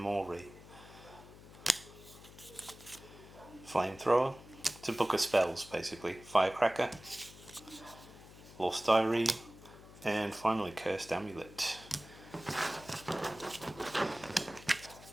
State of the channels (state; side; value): noise; left; hum, 19 dB below the sound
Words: Flamethrower, it's a book of spells basically. Firecracker, Lost Diary, and finally Cursed Amulet.